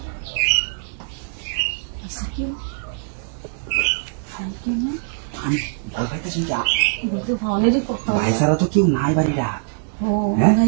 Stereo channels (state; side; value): silent; left; 64 dB below the other